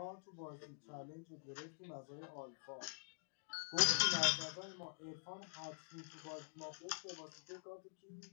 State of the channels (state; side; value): silent; right; digital silence